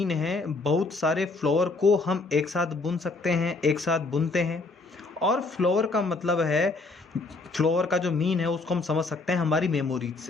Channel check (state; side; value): quieter; right; 3.5 dB